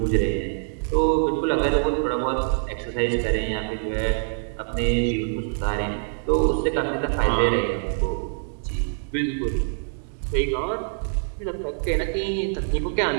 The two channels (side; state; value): left; silent; 61 dB below the other